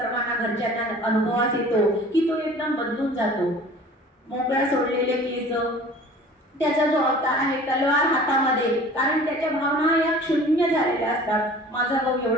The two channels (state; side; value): normal; both; correlation 0.45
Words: घरच्यांना अनुभवास येतो की तो एकदम बदलून जातो. मोकळ्या सोडलेले केस, त्याचा जो अवतार आहे तलवार हातामध्ये, कारण त्याच्या भावना या शून्य झालेल्या असतात. माझा भाऊ